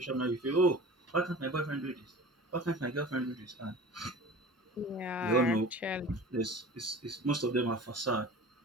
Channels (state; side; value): normal; both; correlation 0.39